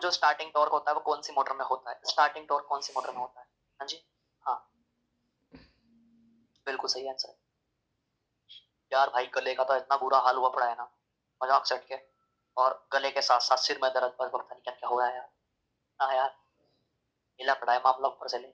स्टार्टिंग टॉर्क होता है वो कौन सी मोटर में होता है? स्टार्टिंग टॉर्क कौन सी मोटर में होता है? हाँ जी, हाँ बिल्कुल सही आंसर। यार भाई गले का तो इतना बुरा हाल हुआ पड़ा है ना, मजाक सेट के, और गले के साथ साथ सिर में दर्द, पर पता नहीं क्या क्या हो रहा है यार। हाँ यार, हिला पड़ा है मामला ऊपर से ले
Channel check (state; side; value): identical; both; correlation 1.00